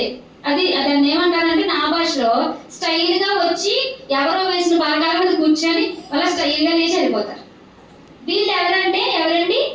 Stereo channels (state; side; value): identical; both; correlation 1.00